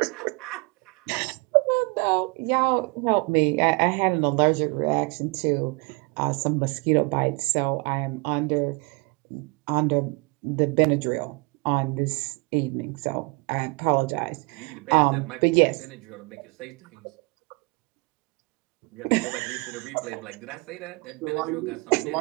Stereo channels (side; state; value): left; quieter; 29.7 dB